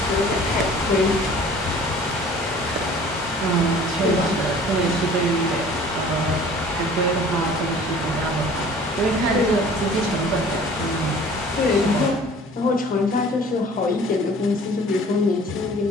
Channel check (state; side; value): normal; both; correlation 0.48